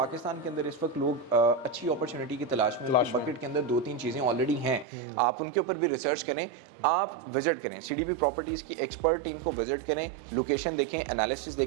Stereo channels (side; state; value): left; drops out; at 4.9 s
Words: के अंदर इस वक्त लोग अच्छी अपॉर्चुनिटी की तलाश में, बकेट के अंदर 2-3 चीज़ें ऑलरेडी हैं, आप उनके ऊपर भी रिसर्च करें, आप विजिट करें। सीडीबी प्रॉपर्टीज़ की एक्सपर्ट टीम को विजिट करें, लोकेशन देखें, एनालिसिस